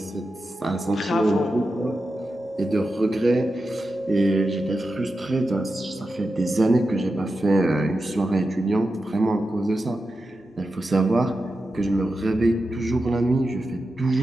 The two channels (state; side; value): normal; both; correlation 0.90